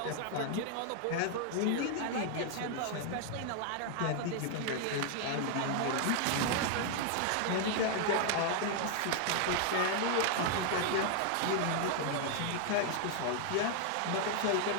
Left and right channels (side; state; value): both; different; correlation 0.00